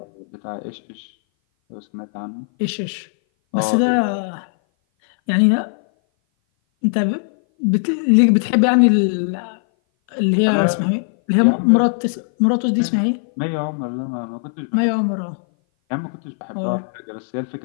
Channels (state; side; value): silent; right; 58 dB below the other